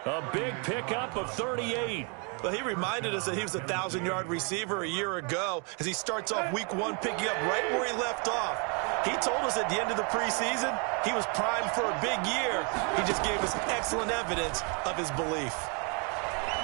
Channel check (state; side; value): quieter; left; 35.7 dB